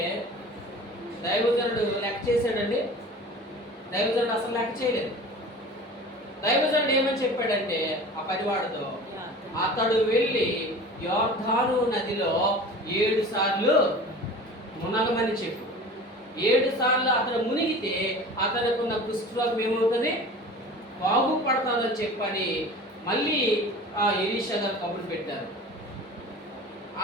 దైవజనుడు లెక్క చేశాడండి? దైవజనుడు అసలు లెక్క చేయలేదు. దైవజనుడు ఏమని చెప్పాడంటే ఆ పరివాడితో, అతడు వెళ్ళి యోర్దాను నదిలో 7 సార్లు మునగమని చెప్పు. 7 సార్లు అతను మునిగితే అతనుకున్న కుష్ఠరోగం ఏమవుతుంది? బాగుపడతాదని చెప్పని మళ్ళీ ఎలీషా గారు కబురు పెట్టారు.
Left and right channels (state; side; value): normal; both; correlation 0.39